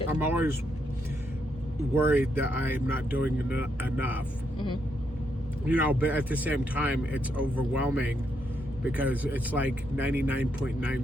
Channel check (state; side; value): normal; both; correlation 0.78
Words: I'm always worried that I'm not doing enough. You know, but at the same time, it's overwhelming because it's like